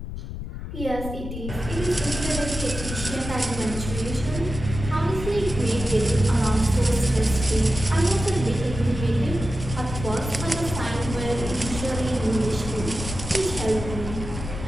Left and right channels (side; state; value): left; noise; rumble, 7 dB below the sound